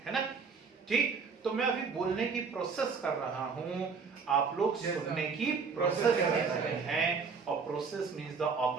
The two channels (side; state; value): left; quieter; 5.3 dB